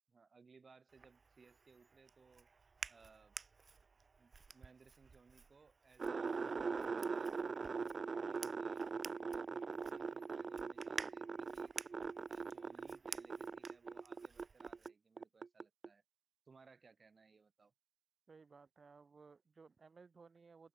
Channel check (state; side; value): quieter; left; 4.5 dB